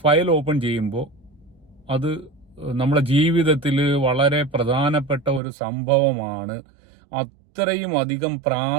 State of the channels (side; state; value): left; drops out; at 5.4 s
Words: ഫയൽ ഓപ്പൺ ചെയ്യുമ്പോൾ അത് നമ്മുടെ ജീവിതത്തിൽ വളരെ പ്രധാനപ്പെട്ട ഒരു സംഭവമാണ്. അത്രയും അധികം